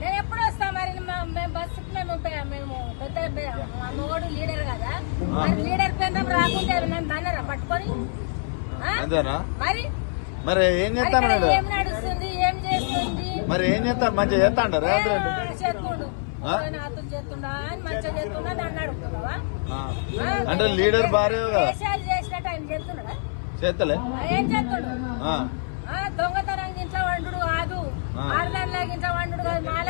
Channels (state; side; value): silent; right; 58 dB below the other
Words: నేను ఎప్పుడు వస్తా మరి మేము బస్సుకి మేము పెద్ద మా మోడు లీడర్ కదా మరి లీడర్ కేంద్రం రాకుంటే నన్ను బాగా పట్టుకొని అంతేనా మరి మరి ఏం చేస్తాను ఏం నడుస్తుంది ఏం చేస్తుంది మరి ఏం చేస్తాను మంచిగా చేస్తా అంటారు చేస్తుండు నాతో చేస్తుండా అని మంచిగా చేస్తుండా నన్ను అడుగుతున్నావా అంటే లీడర్ భార్య దేశాలు చేసినట్టు ఆయన చేస్తున్నాడా చేస్తలే ఏం చేస్తుండు దొంగతనం గించ వండు కాదు ఆడదానిలా గించ వండు